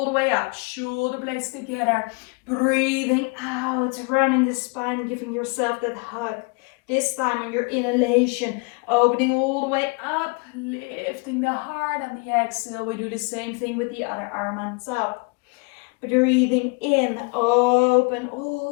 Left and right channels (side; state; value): right; quieter; 31.2 dB